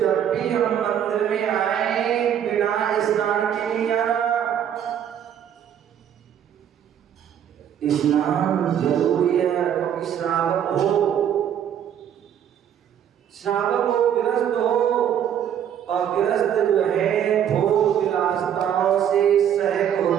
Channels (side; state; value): left; quieter; 9.4 dB